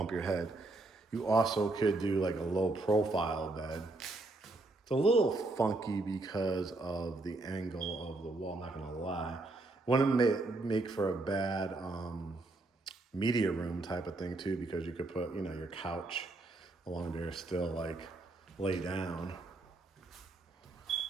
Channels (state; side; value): quieter; left; 3.0 dB